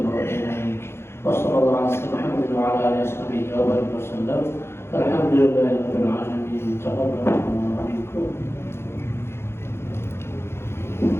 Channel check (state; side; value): late; right; 0.12 ms